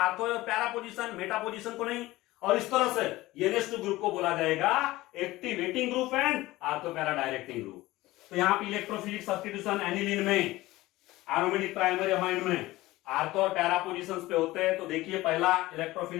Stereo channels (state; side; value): quieter; right; 18.2 dB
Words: और पैरा पोजीशन, मेटा पोजीशन को नहीं. और इस तरह से NH2 ग्रुप को बोला जाएगा activating group and ortho para directing group. तो यहाँ पे इलेक्ट्रोफिलिक सब्स्टिट्यूशन एनिलीन में, एरोमेटिक प्राइमरी अमाइन में आर्थो और पैरा पोजीशंस पे होते हैं. तो देखिए पहला